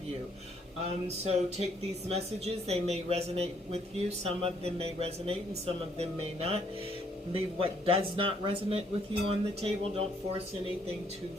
you. So take these messages. They may resonate with you. Some of them may resonate and some of them may not. Leave what does not resonate with you on the table. Don't force anything to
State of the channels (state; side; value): normal; both; correlation 0.68